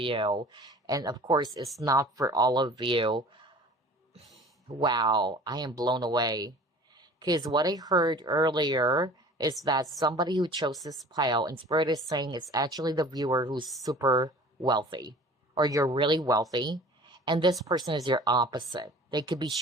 And of course, it's not for all of you. Wow, I am blown away. Because what I heard earlier is that somebody who chose this pile, and Spirit is saying it's actually the viewer who's super wealthy, or you're really wealthy, and this person is your opposite. They could be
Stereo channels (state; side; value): normal; both; correlation 0.44